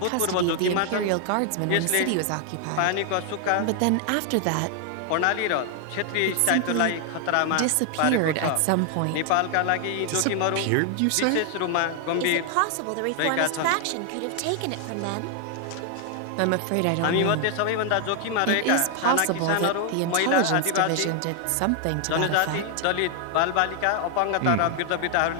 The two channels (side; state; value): both; different; correlation 0.00